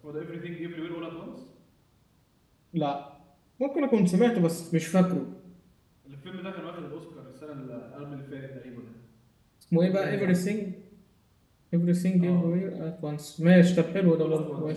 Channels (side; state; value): both; identical; correlation 1.00